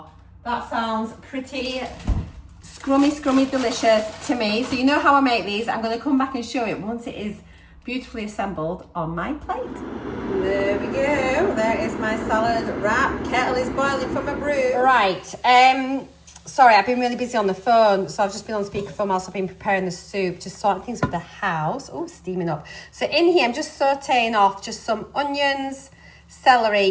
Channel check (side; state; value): both; identical; correlation 1.00